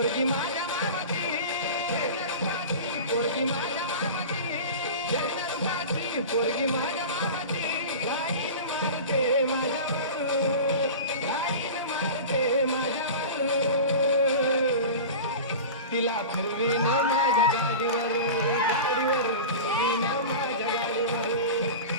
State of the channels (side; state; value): both; inverted; correlation -0.32